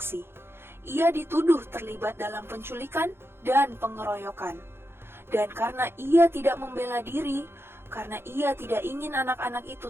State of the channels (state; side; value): late; left; 0.11 ms